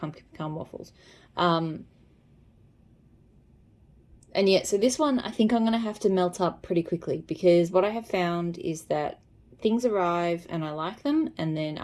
pecan waffles. And yeah, so this one I think I'm going to have to melt up pretty quickly, because what I have found is that things arrive and I like them, and then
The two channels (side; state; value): both; identical; correlation 1.00